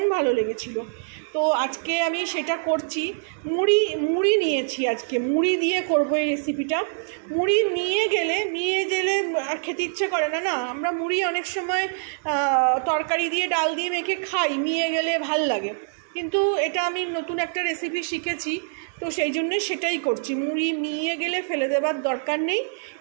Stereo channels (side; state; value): left; silent; 62 dB below the other